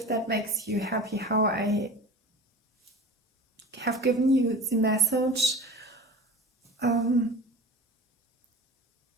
that makes you happy, how I have given you the message.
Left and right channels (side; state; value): both; normal; correlation 0.36